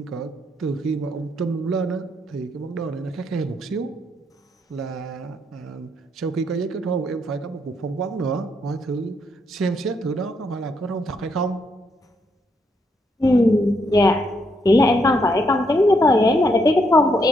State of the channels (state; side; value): normal; both; correlation 0.76